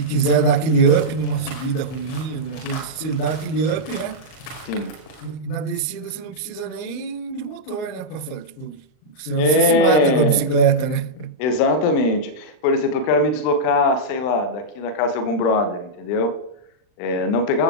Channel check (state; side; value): late; right; 38 ms